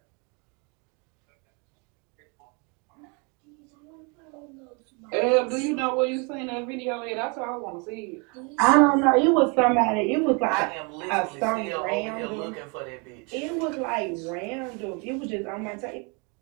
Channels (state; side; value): quieter; left; 32.7 dB